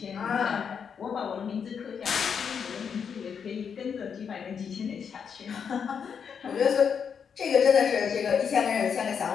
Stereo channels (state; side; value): quieter; right; 6.9 dB